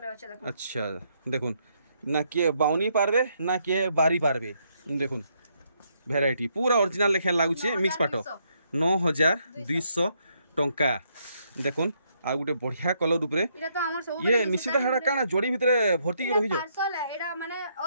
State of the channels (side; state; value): both; inverted; correlation -0.74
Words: अछि देखुन अच्छा देखुन ना के बाउनी पारबे ना के बारी पारबे देखुन वैरायटी पूरा ओरिजिनल लेखे लागुचे मिक्स पाटो 9200 टंका देखुन आ गुटे बढ़िया कलर ऊपर इटा तो हमर सब ये निश्चित हेडा काना जोड़ी भितरे भर्ती के रहि जो पार्सल है एडा माने